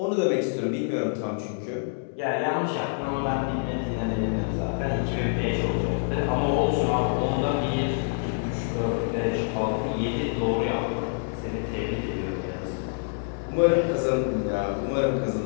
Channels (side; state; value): right; silent; digital silence